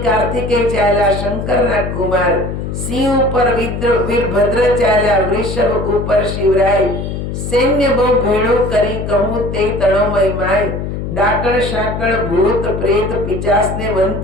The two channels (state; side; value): noise; left; hum, 5 dB below the sound